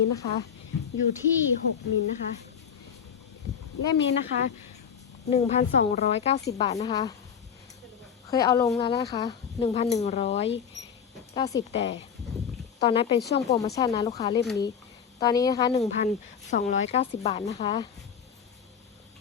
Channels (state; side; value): quieter; right; 7.5 dB